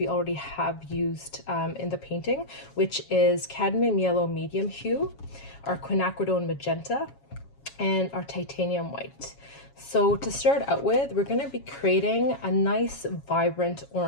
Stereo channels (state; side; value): late; right; 7.2 ms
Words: already have used in the painting, which is cadmium yellow medium hue, our quinacridone magenta, and our titanium white. So to start out with, we're going to be creating a nice vibrant